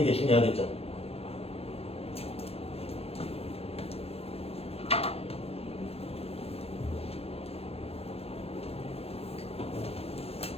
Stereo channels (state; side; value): late; right; 0.29 ms